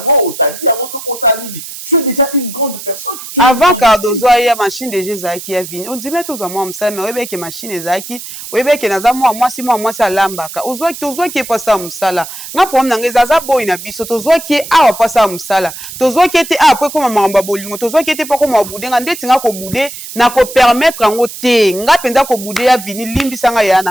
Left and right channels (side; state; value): right; noise; hiss, 12 dB below the sound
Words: au Tadi Yango, ce qu'on s'aligne. Tu es déjà une grande personne. Avant Cardozo, il y a machine de Jésus qui a venu. On dit, mais tous à moi, ça, mais oui, que machine est Zaki, oui, que n'a moi, si moi, ça lambaka. Ozo qui est pas ça, moussala. N'a pas m'nangé Zaza boy na biso, Tozo qui est à pas ça, moussala. Tozo qui était à après comme mamba bolingo, Tozo qui était pas comme boudé, ngande tinga ko boudé, na ko permettre en oté, nga penda ko boudé a vini limbi sanga ya